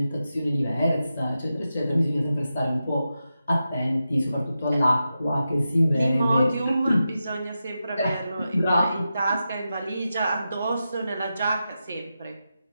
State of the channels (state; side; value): inverted; both; correlation -0.90